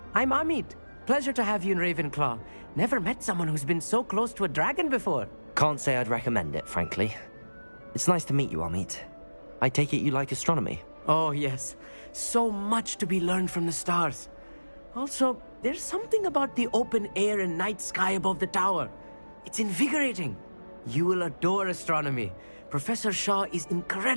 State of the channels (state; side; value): inverted; both; correlation -1.00